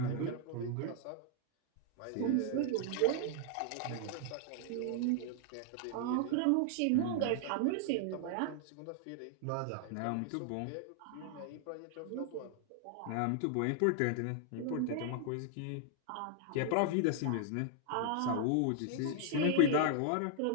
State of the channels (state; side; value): different; both; correlation 0.00